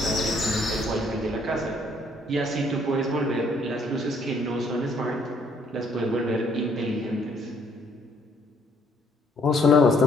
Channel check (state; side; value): normal; both; correlation 0.66